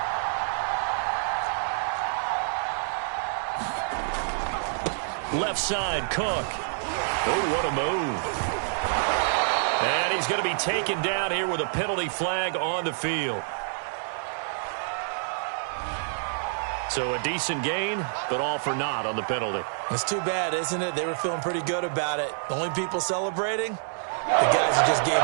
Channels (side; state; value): left; silent; digital silence